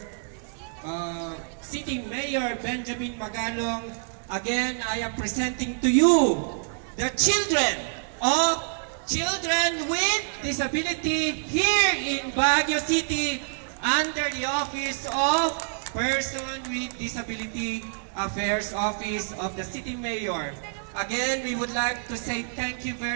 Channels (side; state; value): left; silent; digital silence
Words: sitting Mayor Benjamin Magalong. Again, I am presenting to you the children with disability here in Baguio City under the Office of Person with Disability Affairs Office of the City Mayor. Again, we would like to say thank you